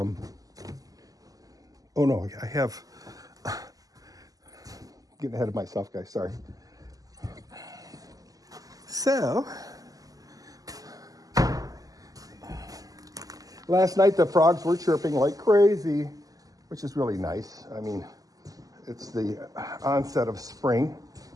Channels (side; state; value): left; late; 0.17 ms